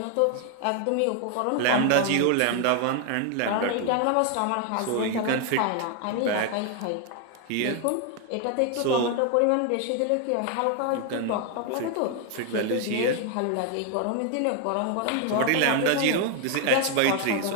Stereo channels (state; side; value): different; both; correlation 0.01